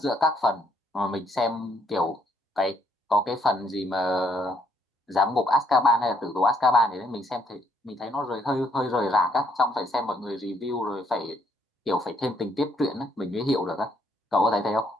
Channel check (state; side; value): normal; both; correlation 0.70